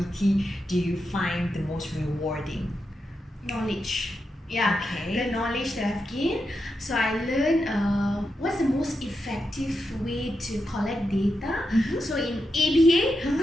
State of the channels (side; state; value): both; normal; correlation 0.87